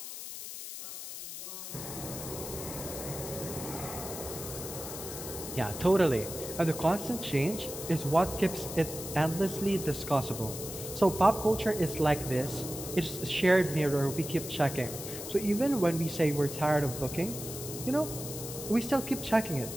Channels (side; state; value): left; noise; hiss, 9 dB below the sound